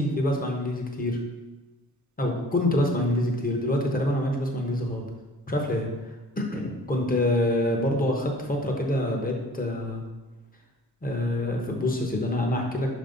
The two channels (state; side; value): normal; both; correlation 0.50